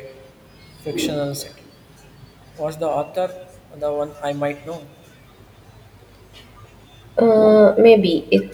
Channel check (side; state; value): both; identical; correlation 1.00